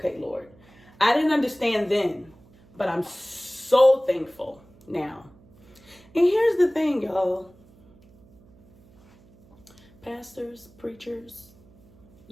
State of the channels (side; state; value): right; noise; hum, 27 dB below the sound